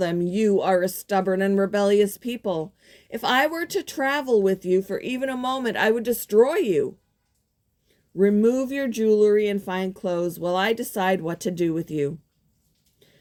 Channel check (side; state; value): both; identical; correlation 1.00